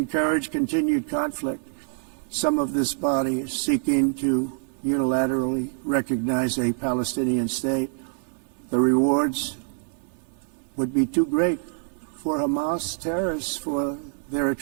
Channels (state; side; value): silent; left; digital silence